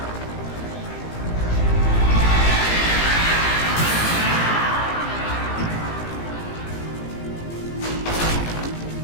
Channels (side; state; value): right; late; 18 ms